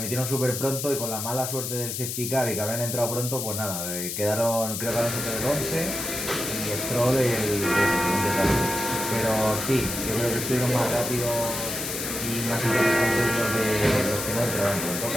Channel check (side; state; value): left; noise; hiss, 4 dB below the sound